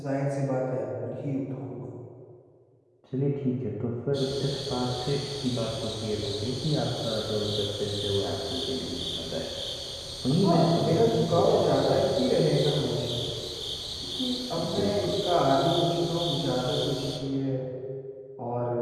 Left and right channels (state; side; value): identical; both; correlation 1.00